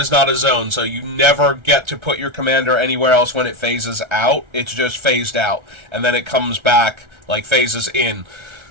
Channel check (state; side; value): late; left; 1.3 ms